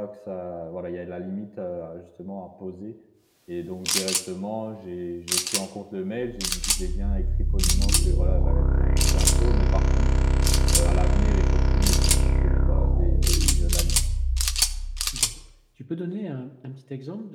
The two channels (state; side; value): identical; both; correlation 1.00